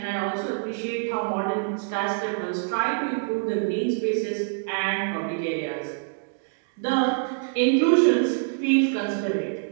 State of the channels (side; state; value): left; silent; digital silence